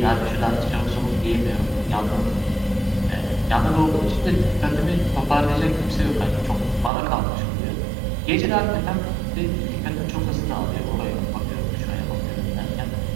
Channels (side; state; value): left; drops out; at 6.9 s